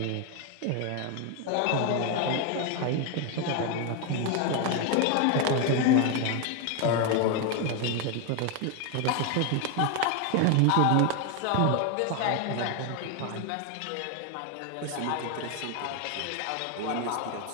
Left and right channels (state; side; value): different; both; correlation 0.01